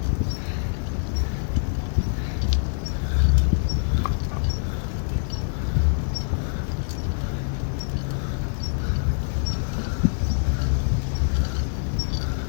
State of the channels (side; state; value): right; silent; 62 dB below the other